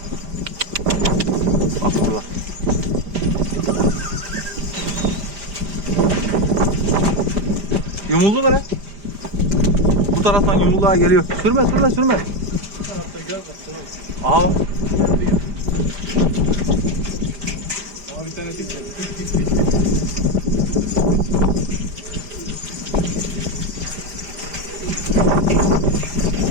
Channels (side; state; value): left; late; 5.0 ms